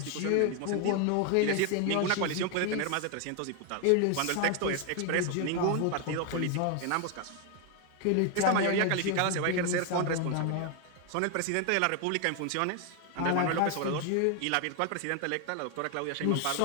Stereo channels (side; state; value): both; different; correlation 0.01